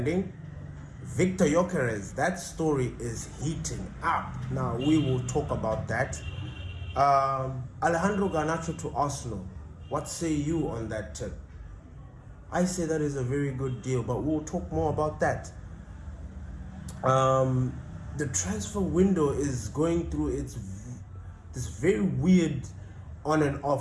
Victor Gyokerez, that story is heating up. Now, we will talk about that. Alejandro Garnacho to Arsenal. What say you on that tip? I say that is a very good deal, but we'll talk more about that. The transfer window is going through this very weird on and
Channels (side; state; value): both; identical; correlation 1.00